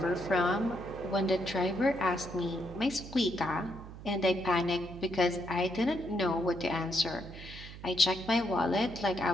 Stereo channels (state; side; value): noise; right; hum, 14 dB below the sound